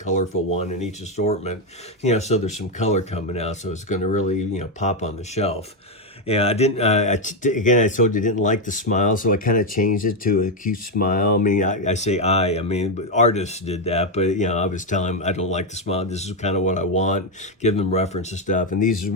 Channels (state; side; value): normal; both; correlation 0.04